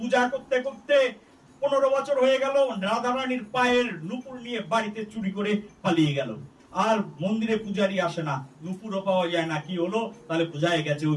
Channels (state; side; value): identical; both; correlation 1.00